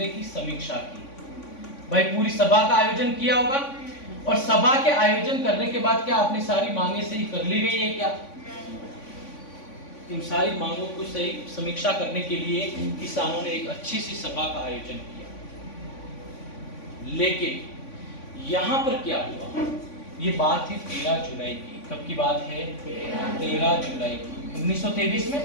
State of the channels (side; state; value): right; late; 3.5 ms